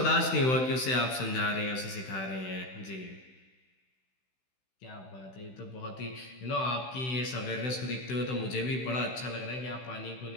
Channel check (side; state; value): right; late; 16 ms